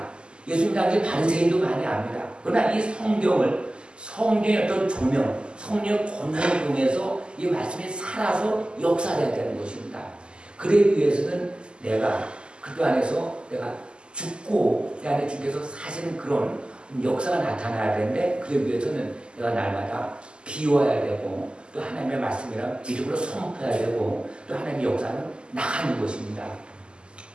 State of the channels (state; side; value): late; left; 0.049 ms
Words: 예수님 당시 바리새인도 많이 압니다. 그러나 이 성경의 어떤 조명, 성령의 권능을 통해서 이 말씀이 살아서 역사해야 되는 것입니다. 그러기 위해서는 내가 그리스도 안에서 내가 죽고 내 안에 주께서 사시는 그런 역사가 나타나야 되는데 그러기 위해서는 내가 날마다 비워야 되고 또 하나님의 말씀이랑 믿음으로 선포해야 되고 또 하나님의 역사는 나가는 것입니다.